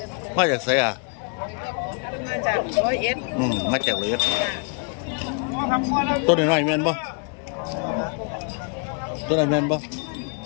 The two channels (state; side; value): quieter; right; 37.2 dB